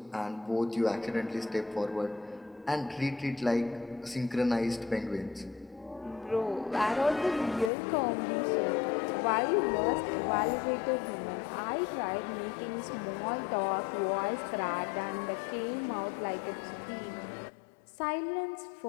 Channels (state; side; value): drops out; right; at 7.7 s